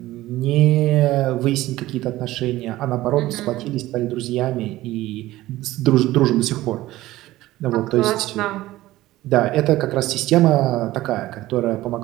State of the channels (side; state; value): left; quieter; 16.6 dB